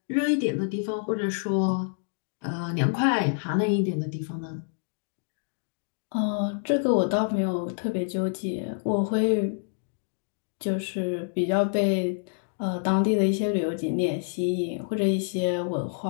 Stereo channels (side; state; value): right; silent; digital silence